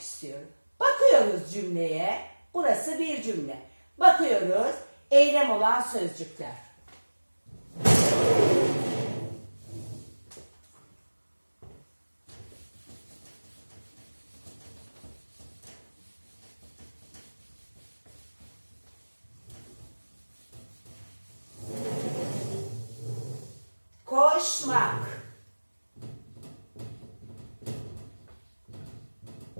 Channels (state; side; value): inverted; both; correlation -1.00